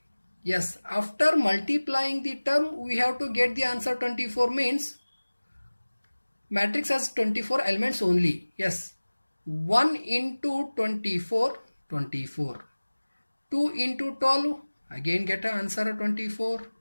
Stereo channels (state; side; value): inverted; both; correlation -1.00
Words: Yes, after multiplying the term, we have to get the answer 24, means matrix has 24 elements only. Yes, 1 into 24, 24. 2 into 12, Again get an answer 24.